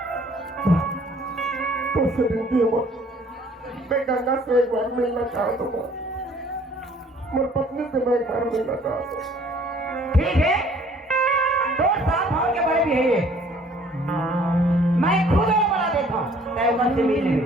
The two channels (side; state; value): both; normal; correlation 0.57